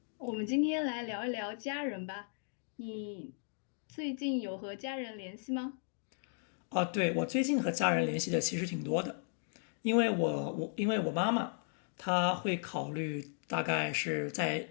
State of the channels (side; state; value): right; silent; digital silence